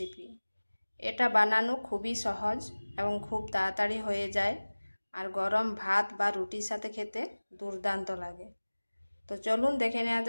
এটা বানানো খুবই সহজ এবং খুব তাড়াতাড়ি হয়ে যায়, আর গরম ভাত বা রুটির সাথে খেতে দুর্দান্ত লাগে। তো চলুন দেখে নেওয়া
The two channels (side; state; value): both; inverted; correlation -1.00